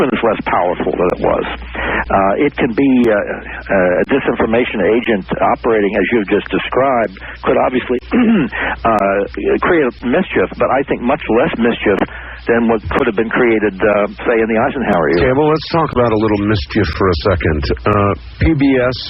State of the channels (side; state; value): both; identical; correlation 1.00